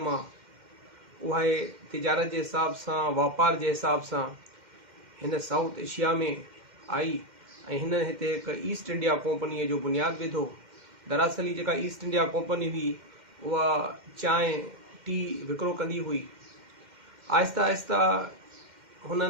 उहा तिजारत जे हिसाब सां, वापार जे हिसाब सां हिन साउथ एशिया में आई ऐं हिन हिते हिकु ईस्ट इंडिया कंपनीअ जो बुनियादु विधो। दरअसल ही जेका ईस्ट इंडिया कंपनी हुई उहा चांहि टी विकिरो कंदी हुई। आहिस्ता आहिस्ता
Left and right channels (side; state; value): left; late; 2.1 ms